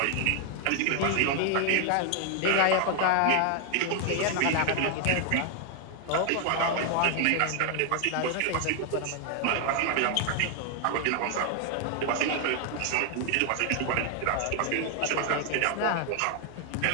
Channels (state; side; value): different; both; correlation 0.00